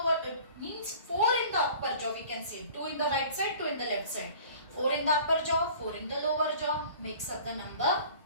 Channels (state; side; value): inverted; both; correlation -0.46